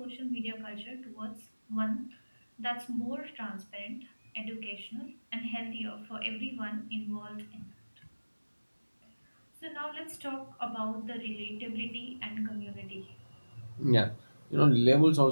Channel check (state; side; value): inverted; both; correlation -1.00